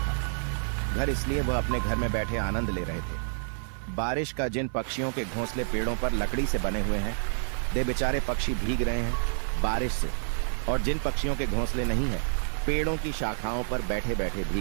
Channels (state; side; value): silent; left; 59 dB below the other